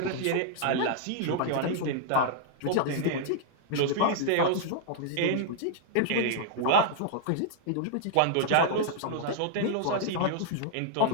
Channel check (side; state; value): both; different; correlation -0.01